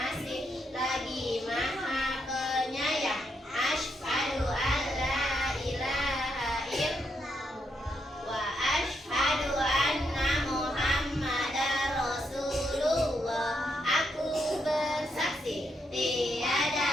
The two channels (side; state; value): both; normal; correlation 0.79